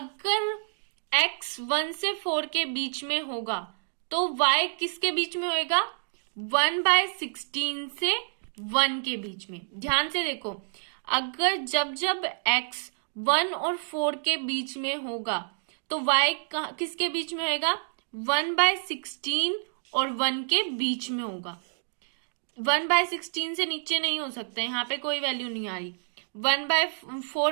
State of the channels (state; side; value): silent; left; digital silence